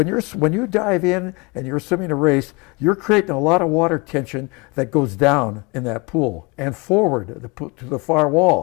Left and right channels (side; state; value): right; quieter; 27.9 dB